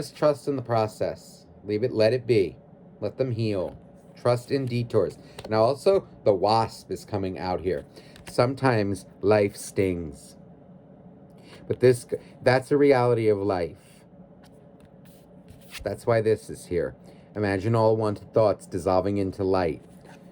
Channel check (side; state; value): both; identical; correlation 1.00